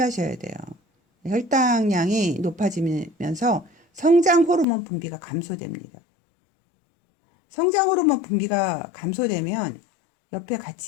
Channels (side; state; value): right; drops out; at 4.7 s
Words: 돼요. 혈당량이 높아지면서 성장 호르몬 분비가 감소됩니다. 성장 호르몬 분비가 감소되면 옆에